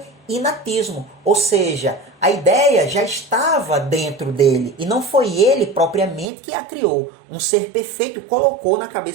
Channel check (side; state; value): left; drops out; at 6.3 s